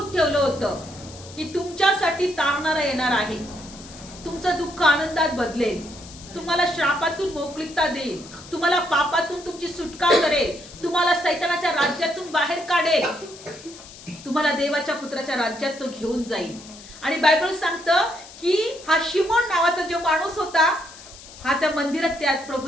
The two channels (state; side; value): noise; left; hiss, 18 dB below the sound